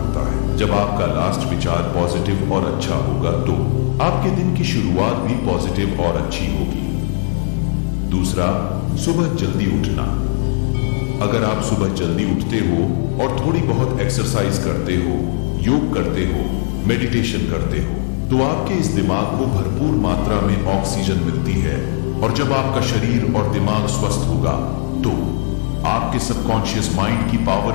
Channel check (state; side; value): silent; right; digital silence